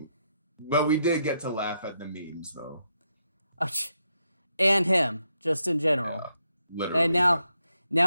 But we did get to laugh at the memes though. And him, just in general. Yeah, literally. And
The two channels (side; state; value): both; inverted; correlation -0.80